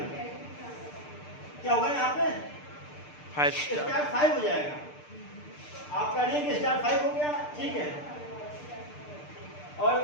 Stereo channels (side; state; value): right; late; 6.7 ms